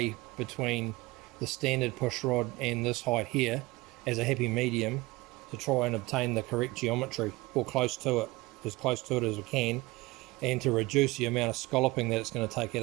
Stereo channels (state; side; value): quieter; left; 21.2 dB